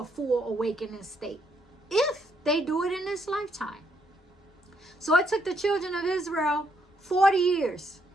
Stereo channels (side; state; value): both; normal; correlation 0.73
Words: full awakening state, if they do it in this lifetime. So it took the children of Israel 40 years